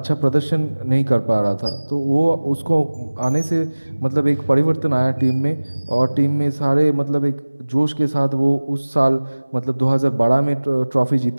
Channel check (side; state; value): both; inverted; correlation -1.00